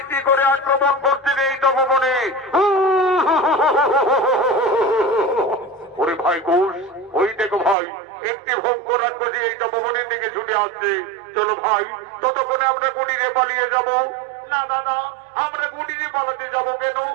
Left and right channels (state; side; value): drops out; left; at 7.8 s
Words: করে আক্রমণ করছেন এই তপবনে। ওরে ভাই ঘোষ, ওই দেখো ভাই, একটি ভয়ঙ্কর রাক্ষসী এই তপবনের দিকে ছুটে আসছে। চলো ভাই, ততক্ষণে আমরা কুটিরে পালিয়ে যাব। না দাদা, আমরা কুটিরে পালাতে যাব কেন?